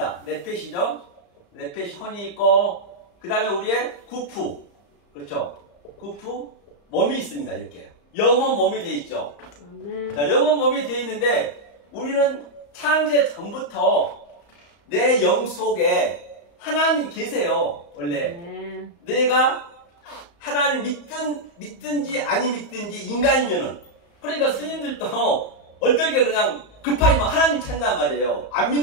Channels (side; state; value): right; late; 34 ms